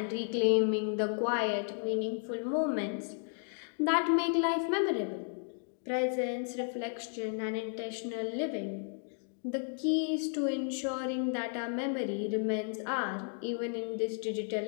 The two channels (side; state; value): right; silent; 55 dB below the other